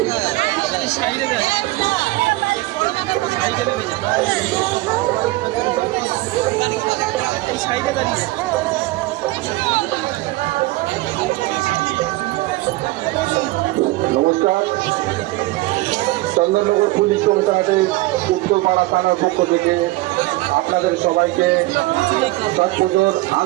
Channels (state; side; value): quieter; left; 19.7 dB